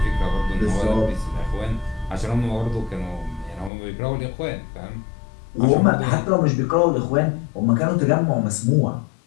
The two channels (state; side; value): drops out; right; at 3.7 s